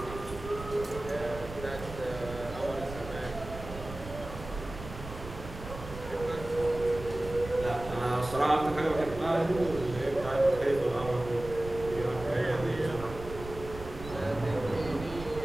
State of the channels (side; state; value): right; noise; rumble, 12 dB below the sound